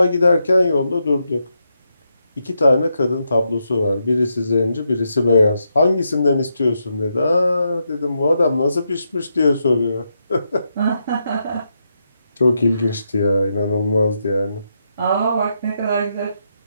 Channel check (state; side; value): inverted; both; correlation -0.82